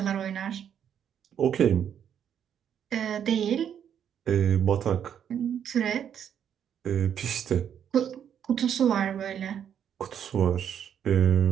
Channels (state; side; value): quieter; left; 8.9 dB